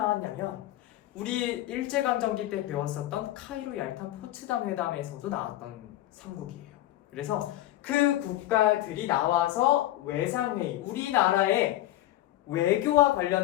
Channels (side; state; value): right; quieter; 14.7 dB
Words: 우리 일제강점기 때 배웠었던 카이로 얄탄 포츠담 회담에서도 나왔던 삼국이에요. 그래서 그 국가들이 나와서 외상회의, 우리나라의 외교와